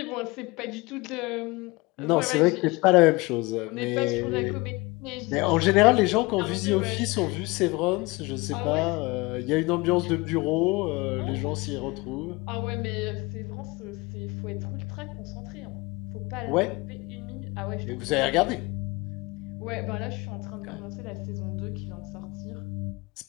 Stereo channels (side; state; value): right; quieter; 24.1 dB